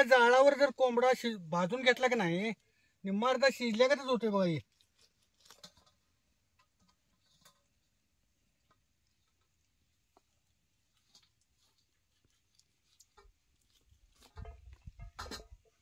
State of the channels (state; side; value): identical; both; correlation 1.00